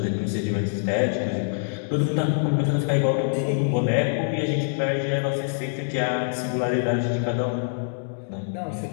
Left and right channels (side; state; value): right; silent; digital silence